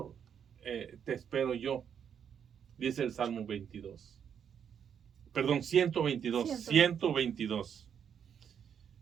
te espero yo, dice el Salmo 122. 122.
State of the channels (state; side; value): quieter; left; 8.0 dB